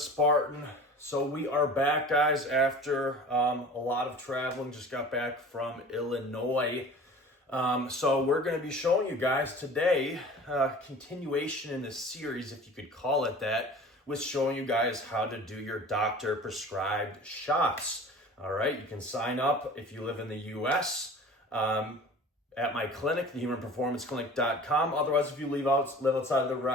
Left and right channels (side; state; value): both; normal; correlation 0.42